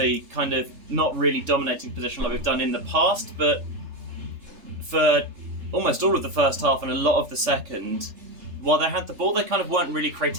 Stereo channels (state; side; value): late; left; 3.3 ms